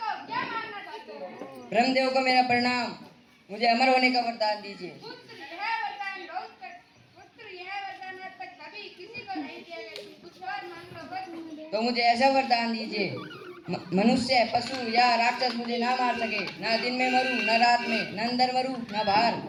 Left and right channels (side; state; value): both; identical; correlation 1.00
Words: ब्रह्मदेव को मेरा प्रणाम, मुझे अमर होने का वरदान दीजिए। तो मुझे ऐसा वरदान दीजिए, मनुष्य, पशु या राक्षस मुझे ना मार सके। ना दिन में मरूं, न रात में, न अंदर मरूं, न बाहर,